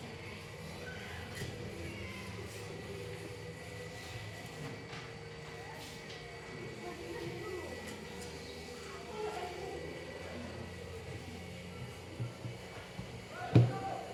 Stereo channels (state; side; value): identical; both; correlation 1.00